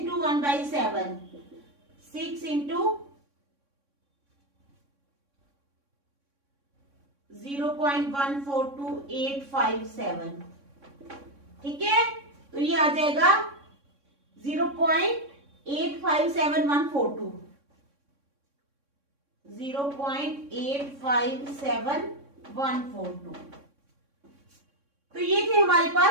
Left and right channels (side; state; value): left; late; 3.6 ms